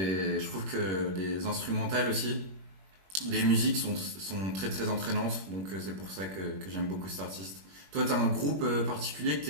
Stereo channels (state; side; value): late; left; 21 ms